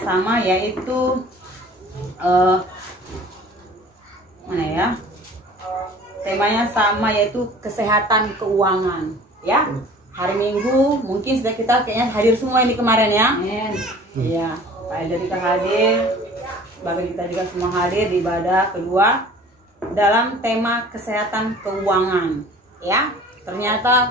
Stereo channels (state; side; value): normal; both; correlation 0.47